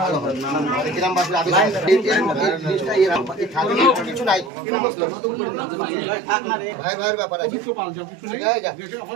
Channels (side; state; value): left; drops out; at 4.5 s